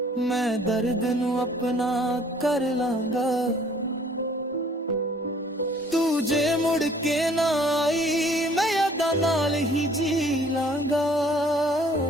मैं दर्द नू अपना कर लांगा। ਤੂੰ ਜੇ ਮੁੜ ਕੇ ਨਾ ਆਈ ਮੈਂ ਯਾਦਾਂ ਨਾਲ ਹੀ ਜੀ ਲਾਂਗਾ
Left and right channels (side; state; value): both; normal; correlation 0.57